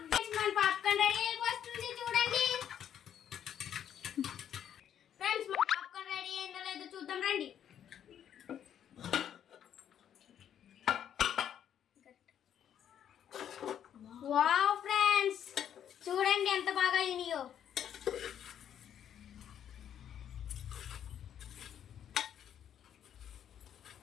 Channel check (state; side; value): quieter; right; 9.6 dB